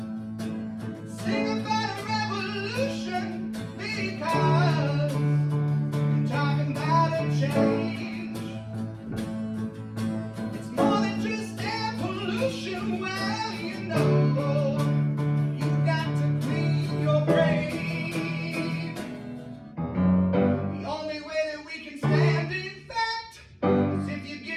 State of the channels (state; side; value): identical; both; correlation 1.00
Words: Sing about a revolution because I'm talking about a change. It's more than just air pollution. Well, you know, you've got to clean your brain. The only way that we can stand, in fact, is if you